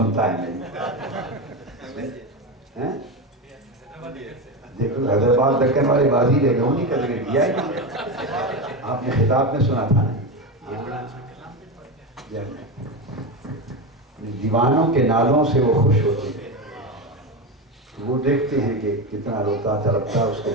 ہے میری. دیکھو حیدرآباد دکن والے بازی لے گئے انہیں کا ذکر کیا ہے. آپ نے خطاب میں سنا تھا نا. دیوانوں کے نالوں سے وہ خوش ہوتے ہیں. وہ دیکھتے ہیں کہ کتنا روتا تڑپتا اس کے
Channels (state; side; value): normal; both; correlation 0.17